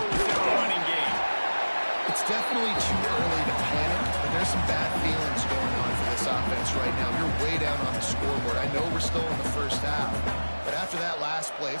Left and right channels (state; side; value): inverted; both; correlation -1.00